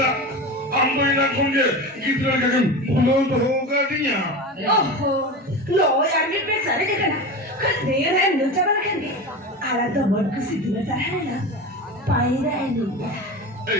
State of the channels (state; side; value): normal; both; correlation 0.27